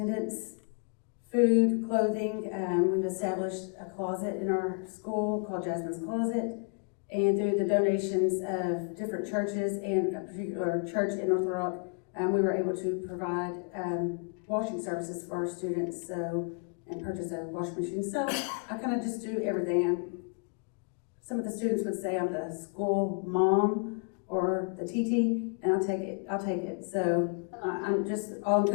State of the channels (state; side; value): quieter; right; 37.9 dB